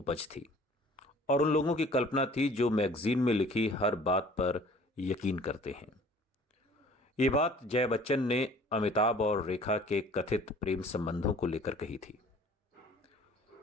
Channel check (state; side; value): normal; both; correlation 0.51